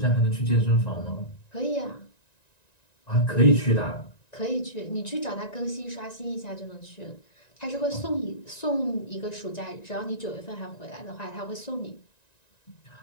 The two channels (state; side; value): late; right; 1.9 ms